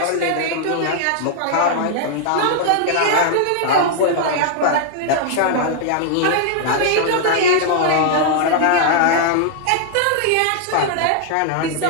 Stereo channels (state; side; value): different; both; correlation -0.01